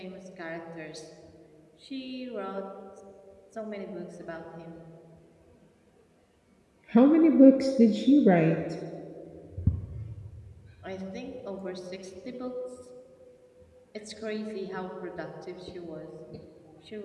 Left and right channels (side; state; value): both; identical; correlation 1.00